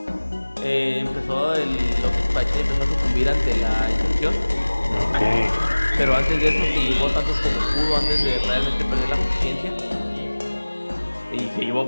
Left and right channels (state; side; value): inverted; both; correlation -1.00